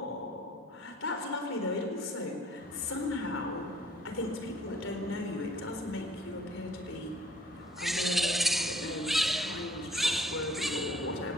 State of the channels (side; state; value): both; normal; correlation 0.56